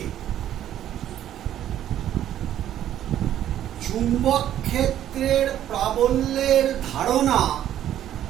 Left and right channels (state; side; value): quieter; left; 11.5 dB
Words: চুম্বক ক্ষেত্রের প্রাবল্যের ধারণা